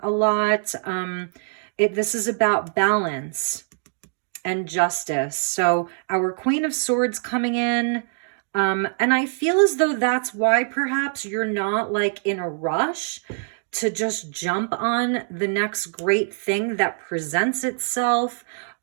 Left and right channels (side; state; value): left; silent; digital silence